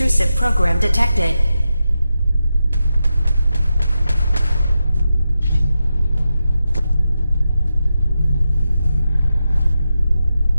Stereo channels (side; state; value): both; inverted; correlation -0.89